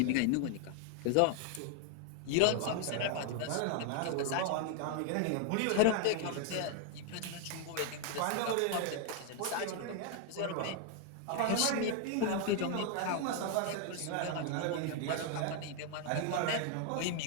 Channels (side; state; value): both; different; correlation 0.00